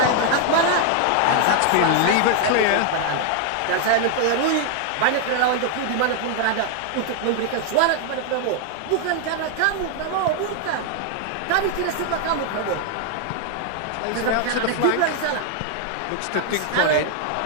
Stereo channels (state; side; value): different; both; correlation 0.00